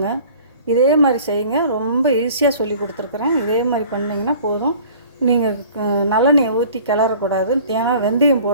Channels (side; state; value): both; inverted; correlation -0.48